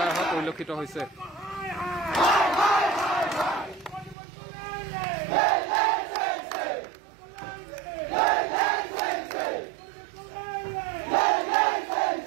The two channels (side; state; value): left; drops out; at 4.2 s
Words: অহা পৰিলক্ষিত হৈছে।